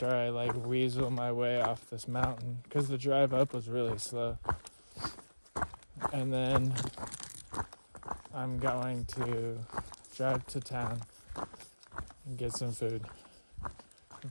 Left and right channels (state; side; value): inverted; both; correlation -1.00